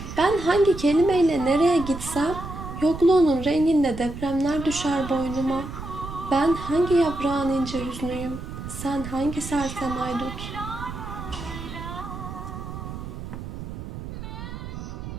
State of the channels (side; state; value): right; noise; rumble, 9 dB below the sound